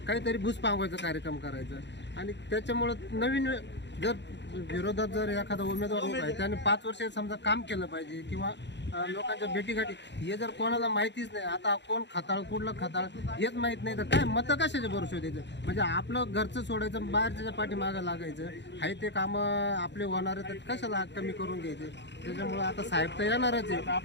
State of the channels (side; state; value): right; late; 0.51 ms